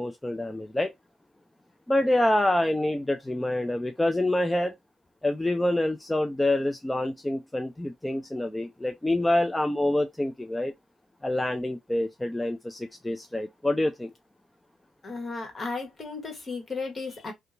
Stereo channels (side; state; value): both; normal; correlation 0.96